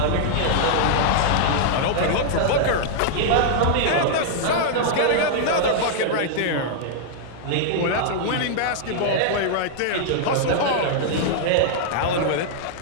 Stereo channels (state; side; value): different; both; correlation -0.01